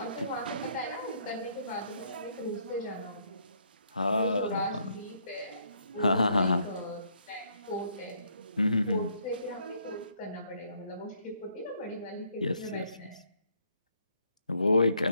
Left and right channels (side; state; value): both; inverted; correlation -0.69